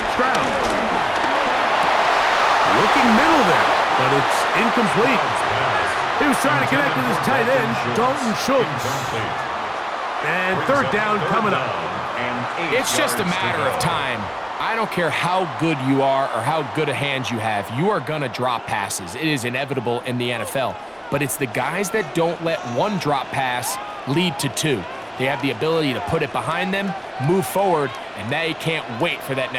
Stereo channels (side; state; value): both; identical; correlation 1.00